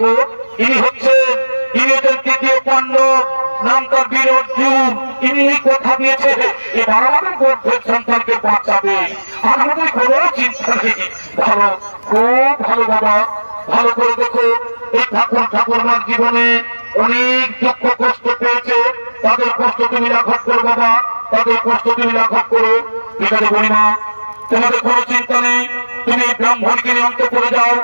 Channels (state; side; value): inverted; both; correlation -1.00